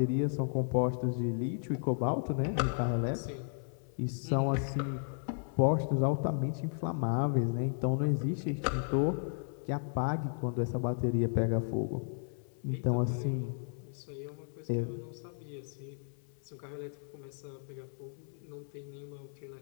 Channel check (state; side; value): silent; right; 55 dB below the other